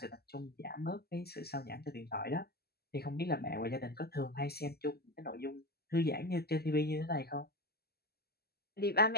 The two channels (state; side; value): late; right; 0.46 ms